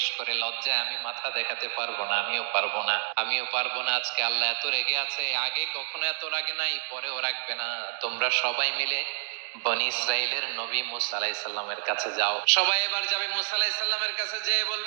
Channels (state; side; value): silent; left; digital silence